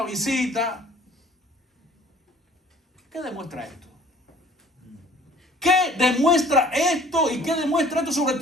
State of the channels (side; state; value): both; normal; correlation 0.52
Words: visita. ¿Qué demuestra esto? ¿Qué demuestra esto y qué demuestra esto sobre